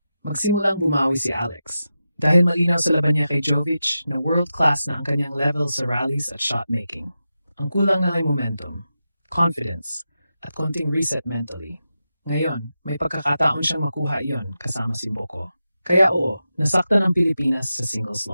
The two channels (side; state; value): both; inverted; correlation -0.90